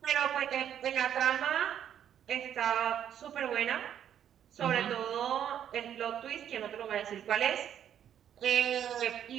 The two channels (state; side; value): quieter; left; 9.7 dB